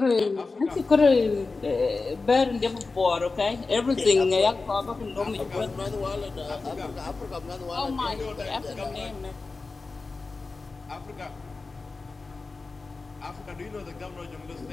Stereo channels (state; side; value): quieter; right; 3.9 dB